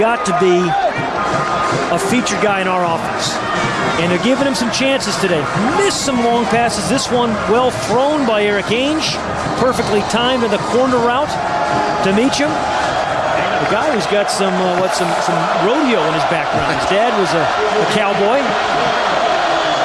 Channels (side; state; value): both; identical; correlation 1.00